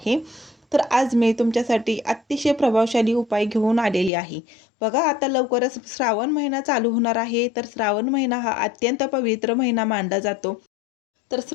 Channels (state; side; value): drops out; right; at 4.1 s